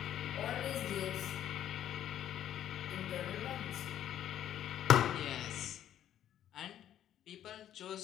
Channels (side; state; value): right; quieter; 11.1 dB